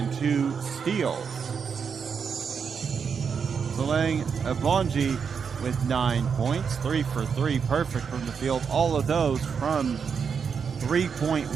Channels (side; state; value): left; quieter; 6.4 dB